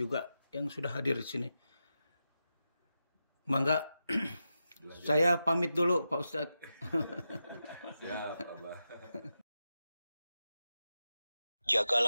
yang sudah hadir di sini. Mangga. Saya pamit dulu Pak Ustadz. Siap, Abah.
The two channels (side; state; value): both; inverted; correlation -0.90